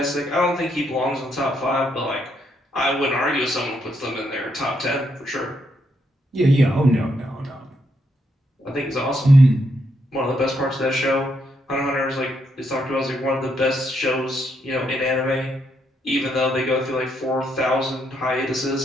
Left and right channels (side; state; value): both; normal; correlation 0.77